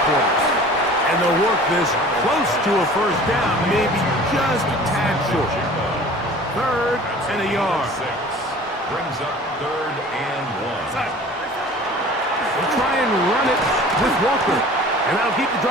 quarters. And they'll work this close to a 1st down, maybe just a tad short. 3rd and a yard. Brings up 3rd and 1. They'll try and run it with Walker. And that'll keep the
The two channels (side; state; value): both; normal; correlation 0.45